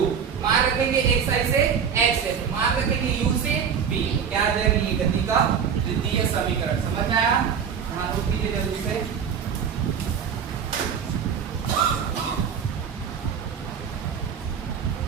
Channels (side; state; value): left; quieter; 7.2 dB